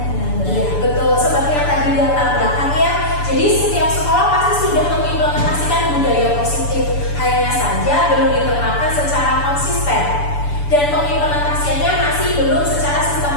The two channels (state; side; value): late; right; 6.9 ms